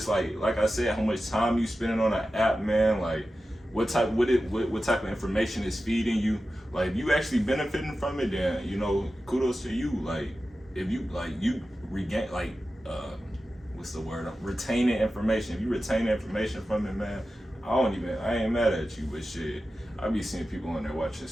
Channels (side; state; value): both; normal; correlation 0.93